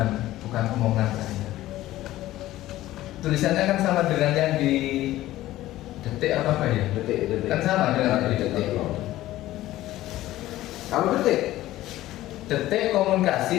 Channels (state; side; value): quieter; right; 15.4 dB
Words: omongan saya. Tulisannya kan sama dengan yang di Detik apa ya? Detik. Kan sama dengan di Detik. Kalau Detik